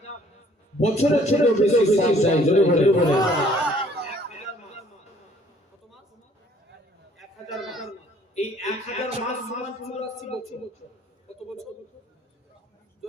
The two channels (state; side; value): normal; both; correlation 0.59